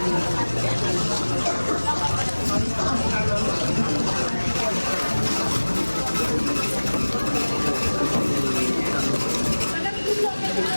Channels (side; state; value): both; inverted; correlation -1.00